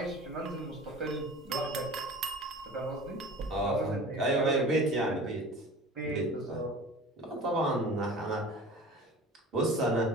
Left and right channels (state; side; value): normal; both; correlation 0.40